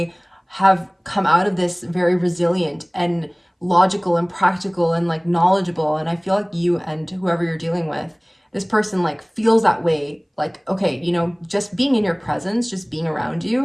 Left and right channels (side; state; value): both; identical; correlation 1.00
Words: have come out of this very resilient and logical and practical and like knowledgeable. And I feel like you and whoever you're dealing with, this person like feels that way. Like, okay, you know, just being in your presence, just being around